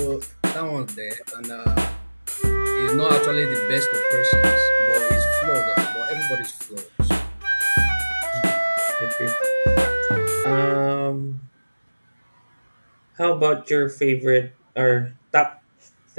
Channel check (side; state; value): both; inverted; correlation -1.00